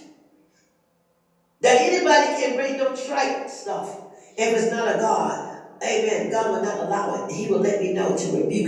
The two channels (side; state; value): both; identical; correlation 1.00